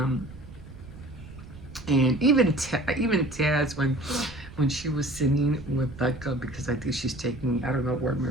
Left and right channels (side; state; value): right; noise; rumble, 17 dB below the sound